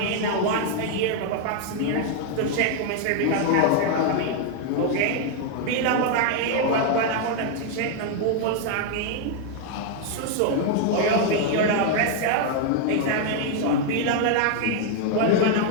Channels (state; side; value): different; both; correlation 0.00